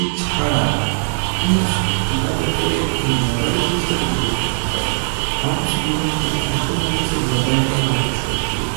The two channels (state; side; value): silent; left; digital silence